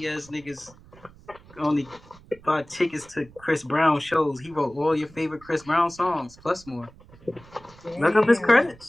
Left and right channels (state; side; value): noise; right; rumble, 24 dB below the sound